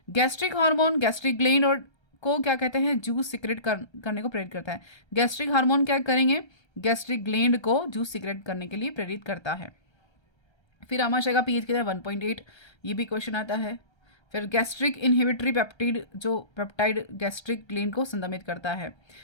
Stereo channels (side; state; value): right; late; 1.3 ms